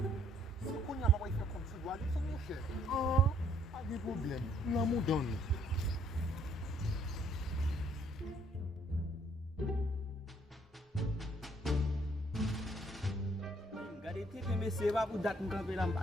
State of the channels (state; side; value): normal; both; correlation 0.65